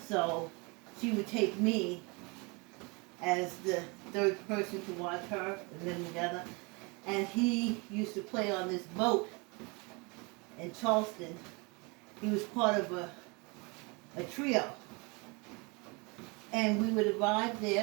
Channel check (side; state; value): left; quieter; 29.2 dB